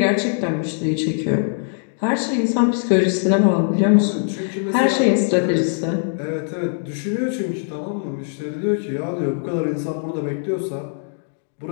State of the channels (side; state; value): right; silent; digital silence